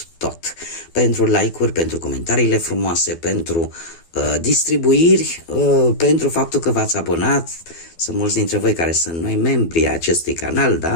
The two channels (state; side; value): late; right; 12 ms